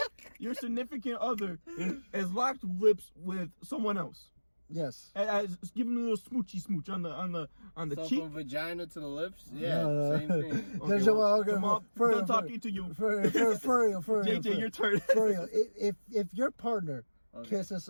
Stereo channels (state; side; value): inverted; both; correlation -1.00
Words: Your significant other has locked lips with someone else. Yes. As giving a little smoochy smooch on the so cheek. From vagina to the lips. Yeah, same thing. Okay, done talking to you. For real. JJ, your turn. For real. If your partner kisses